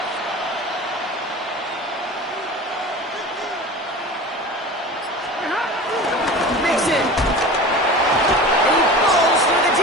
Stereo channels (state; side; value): normal; both; correlation 0.35